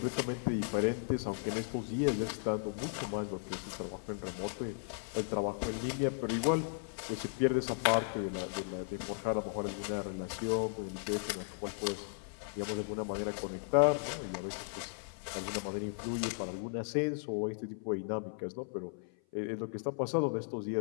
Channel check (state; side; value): silent; right; 54 dB below the other